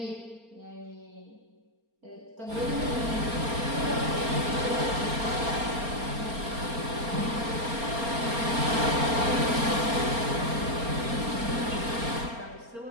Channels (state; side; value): late; left; 4.3 ms